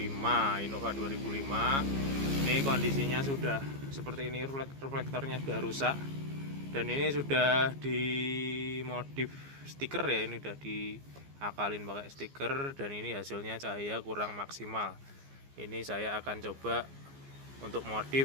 Innova 2005. Ini kondisinya sudah seperti ini, reflektornya sudah rusak, dan ini sudah dimodif stiker ya, ini sudah diakalin pakai stiker, dan ini hasilnya cahaya kurang maksimal. Ini saya akan coba untuk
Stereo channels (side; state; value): left; late; 15 ms